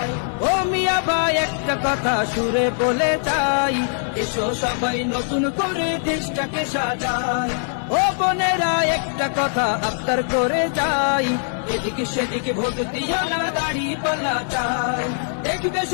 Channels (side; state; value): right; silent; 63 dB below the other